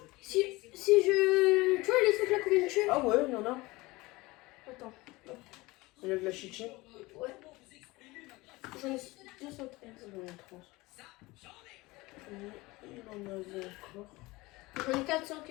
Si je. Tu vois les trucs là qu'on vient de tuer? Ah ouais, il y en a. Attends. Il y a de la chichi. Ouais. J'en ai 213. J'en ai 30. Il en avait encore. J'en ai 400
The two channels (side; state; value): right; quieter; 21.5 dB